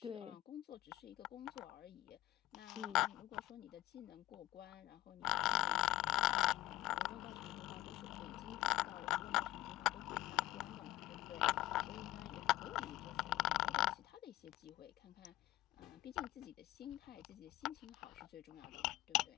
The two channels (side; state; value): right; quieter; 15.7 dB